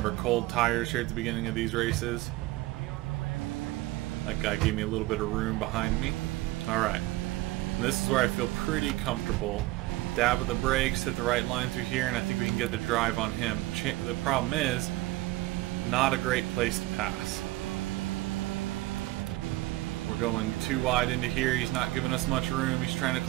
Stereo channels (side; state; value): left; quieter; 18.6 dB